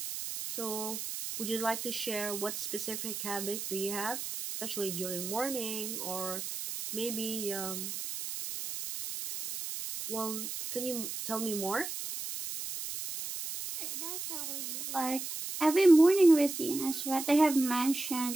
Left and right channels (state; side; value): noise; right; hiss, 6 dB below the sound